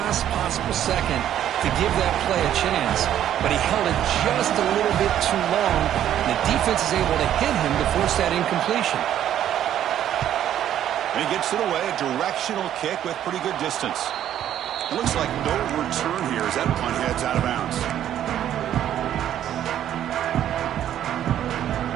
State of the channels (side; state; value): left; quieter; 11.0 dB